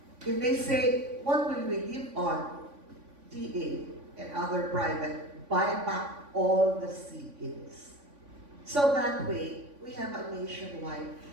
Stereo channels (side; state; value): left; late; 3.5 ms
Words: If they say, what will we live on? DA and other private, buy back all the seedlings. So that way, we have a nationwide.